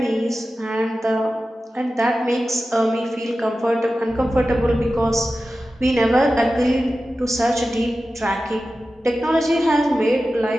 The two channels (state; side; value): normal; both; correlation 0.94